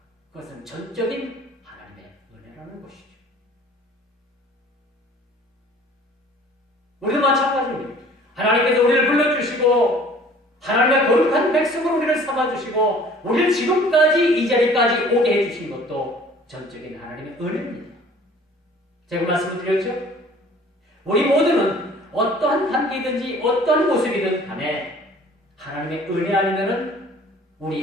그것은 전적인 하나님의 은혜라는 것이죠. 우리도 마찬가지입니다. 하나님께서 우리를 불러주시고 하나님의 거룩한 백성으로 우리를 삼아주시고 우리를 지금까지 이 자리까지 오게 해주신 것도 전적인 하나님의 은혜입니다. 제가 말씀을 드렸죠? 우리 모두는 어떠한 단계든지 어떠한 모습이든 간에 하나님의 은혜 아니면은 우리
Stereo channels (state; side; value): normal; both; correlation 0.51